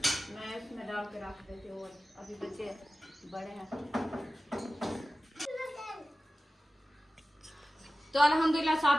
मैं इसमें डाल के रख देती हूँ, अभी बच्चे बड़े हैं। तो अल्हम्दुलिल्लाह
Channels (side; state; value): both; normal; correlation 0.95